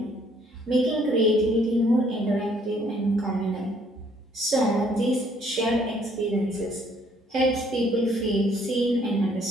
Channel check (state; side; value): normal; both; correlation 0.64